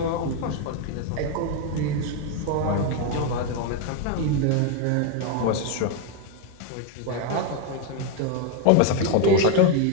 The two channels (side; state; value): both; different; correlation 0.01